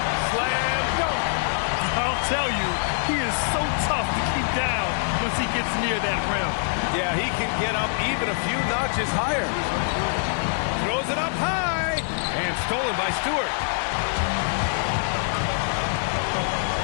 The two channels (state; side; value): silent; right; digital silence